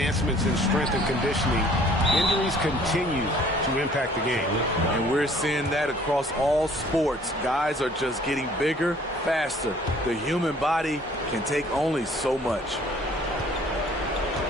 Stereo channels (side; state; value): both; normal; correlation 0.55